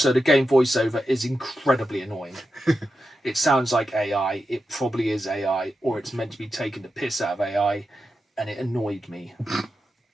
the game voiceover is incredibly annoying. It sounds like AI. It probably is AI, or it's meant to be taking the piss out of AI, and it annoyed me.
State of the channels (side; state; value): both; normal; correlation 0.89